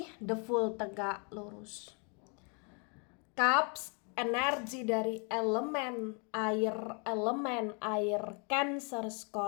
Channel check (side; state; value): right; quieter; 36.4 dB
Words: the full tegak lurus. Cups, energi dari elemen air Cancer,